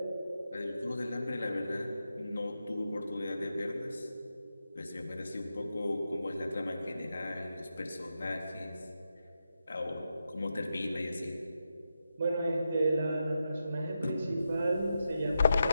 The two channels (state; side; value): inverted; both; correlation -0.88